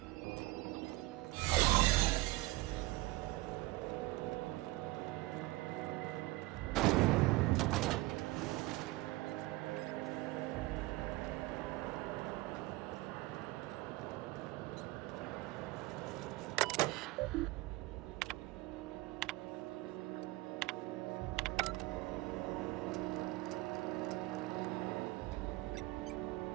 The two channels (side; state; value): left; quieter; 20.2 dB